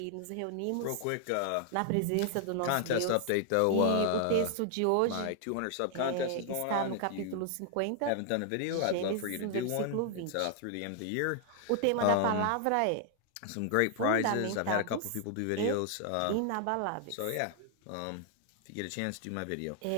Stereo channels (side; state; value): both; different; correlation 0.00